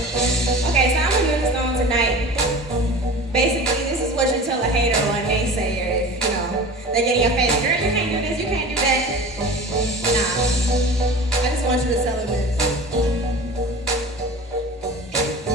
Okay, so I'm gonna do this song tonight. Basically, this is what you tell a hater or a naysayer if, you know, they get in your face, girl, you can't do this, you can't do that. Nah. I just want you to tell them this.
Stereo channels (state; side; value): normal; both; correlation 0.37